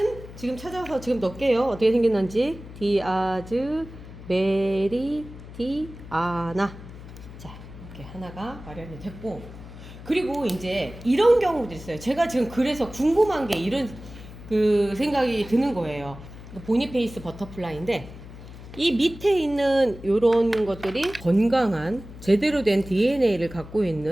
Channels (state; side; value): noise; left; hum, 15 dB below the sound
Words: 지금 찾아서 지금 넣을게요. 어떻게 생겼는지. 디아즈 메리디아나. 자, 이렇게 하나가 마련이 됐고, 그리고 이제 이런 경우도 있어요. 제가 지금 그래서 궁금한 게 이런 그 생각이 드는 거예요. 보니페이스 버터플라이인데, 이 밑에 있는 요런 것들이 건강한 제대로 된 DNA를 갖고